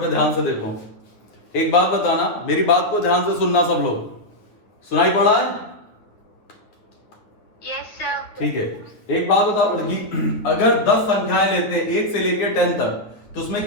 ध्यान से देखो। एक बात बताना, मेरी बात को ध्यान से सुनना सब लोग। सुनाई पड़ा है? Yes sir. ठीक है, एक बात बताओ लड़की, अगर 10 संख्याएं लेते हैं 1 से लेकर 10 तक, तो उसमें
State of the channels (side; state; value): right; late; 9.2 ms